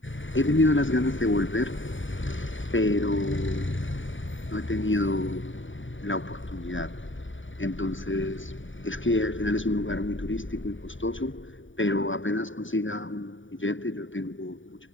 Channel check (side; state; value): right; late; 0.56 ms